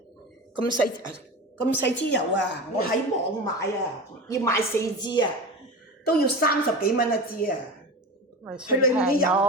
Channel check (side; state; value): both; normal; correlation 0.28